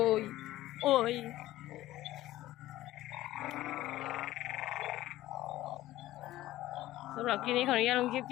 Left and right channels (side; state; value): right; quieter; 15.6 dB